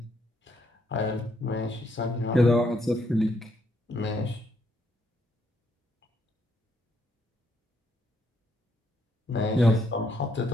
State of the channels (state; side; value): normal; both; correlation 0.73